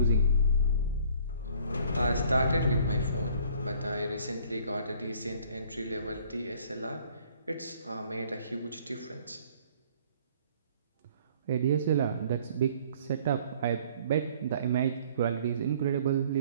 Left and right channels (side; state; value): both; inverted; correlation -0.56